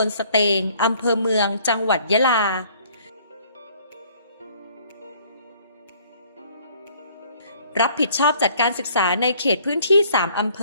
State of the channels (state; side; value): inverted; both; correlation -0.58